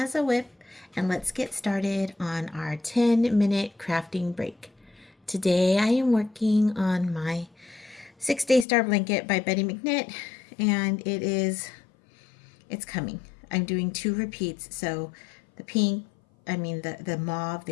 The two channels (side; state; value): right; drops out; at 8.7 s